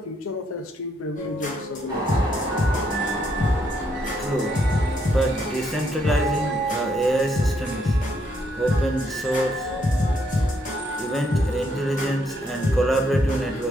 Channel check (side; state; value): both; normal; correlation 0.74